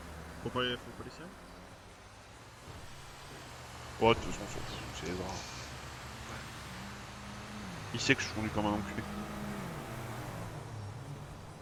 Faut pas les sirènes. Ouais, de toute façon, on s'en fout, c'est les draps. Il sait que je conduis comme un enculé.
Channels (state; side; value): identical; both; correlation 1.00